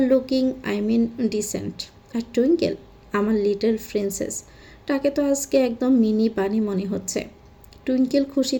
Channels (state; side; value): identical; both; correlation 1.00